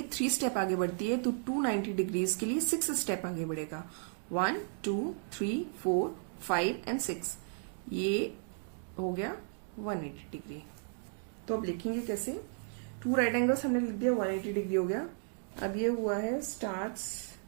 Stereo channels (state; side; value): silent; left; 55 dB below the other